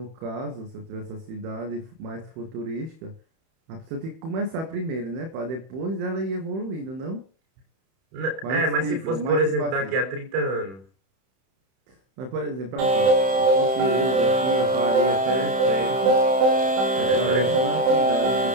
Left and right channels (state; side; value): late; left; 31 ms